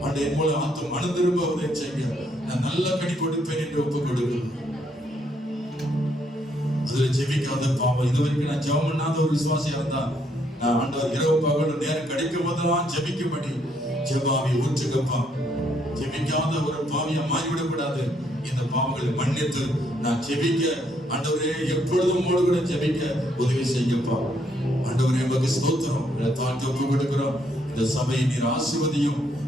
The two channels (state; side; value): normal; both; correlation 0.72